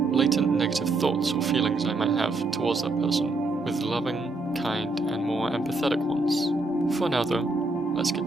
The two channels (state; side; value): quieter; left; 3.2 dB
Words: latent negative thoughts or feelings I might have towards that person with loving, kind, and more empathetic ones. For now though, let's get